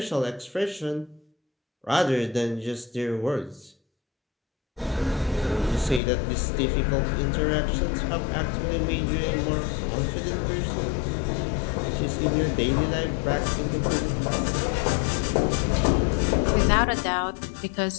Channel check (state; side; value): drops out; right; at 6.0 s